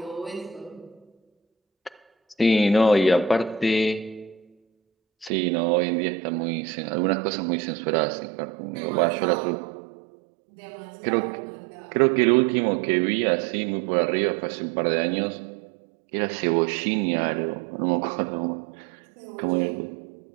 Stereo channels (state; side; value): drops out; left; at 5.3 s